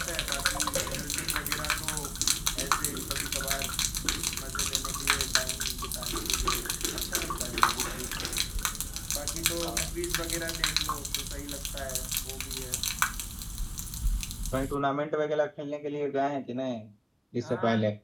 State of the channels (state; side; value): identical; both; correlation 1.00